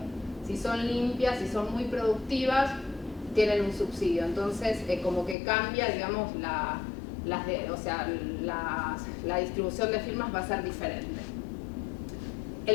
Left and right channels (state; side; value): drops out; right; at 5.4 s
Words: Si son limpias, si son muy productivas, tienen un subsidio. Entonces, como que cambia, digamos, la distribución de firmas va a ser diferente.